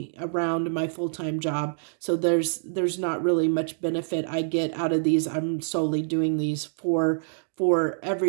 around my full-time job, so there's not really much benefit I get out of these. I'm solely doing these for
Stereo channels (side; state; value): left; silent; digital silence